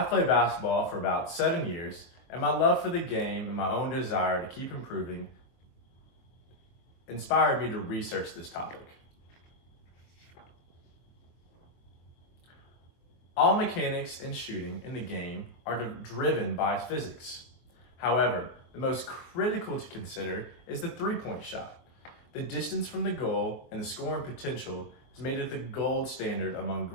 played basketball for about 7 years, and my love for the game and my own desire to keep improving inspired me to research this topic. All mechanics and shooting in the game are driven by physics. However, the most critical to consider is the three-point shot. The distance from the goal and the scoring potential has made it the gold standard among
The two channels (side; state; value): right; late; 23 ms